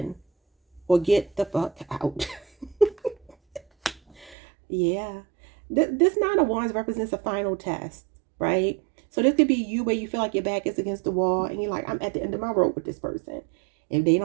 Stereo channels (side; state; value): left; drops out; at 4.4 s